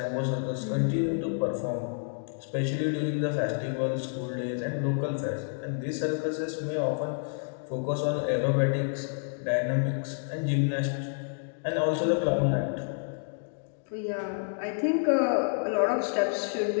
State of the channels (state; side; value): silent; right; digital silence